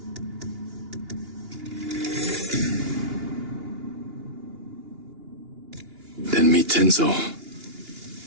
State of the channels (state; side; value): late; left; 2.8 ms